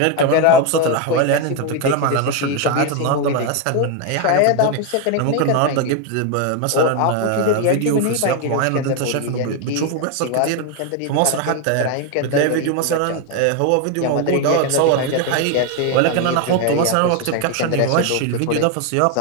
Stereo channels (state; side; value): different; both; correlation 0.01